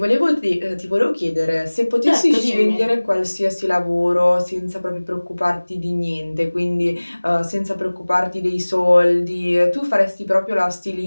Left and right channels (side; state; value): both; inverted; correlation -1.00